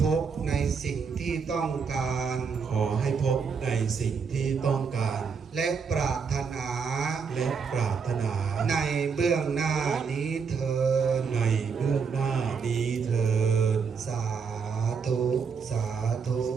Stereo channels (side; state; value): left; quieter; 5.8 dB